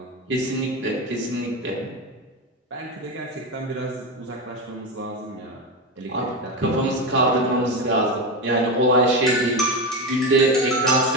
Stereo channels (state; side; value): normal; both; correlation 0.17